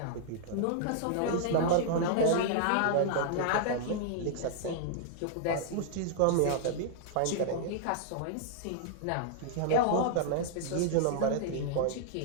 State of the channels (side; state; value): both; different; correlation -0.01